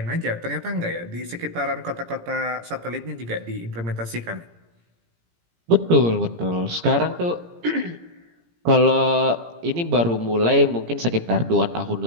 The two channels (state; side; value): late; left; 17 ms